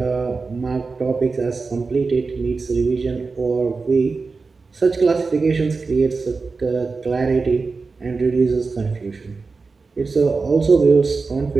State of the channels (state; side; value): quieter; left; 4.3 dB